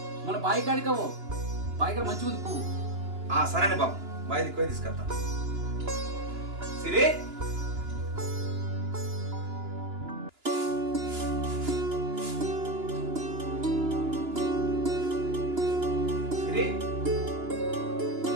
మన బాయి కాడికవో బాయి కాడ మంచిగా ఉంది పువ్వు సరేనే బాబు బాయ్ దిక్కుపోయి తీసుకొస్తా సిరి సిరి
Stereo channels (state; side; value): late; left; 2.9 ms